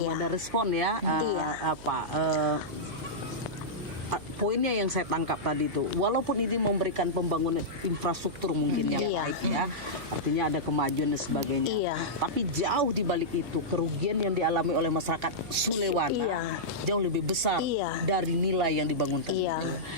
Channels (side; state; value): right; noise; hum, 16 dB below the sound